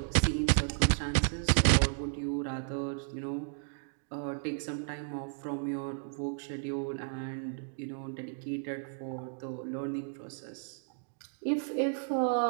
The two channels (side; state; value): left; silent; digital silence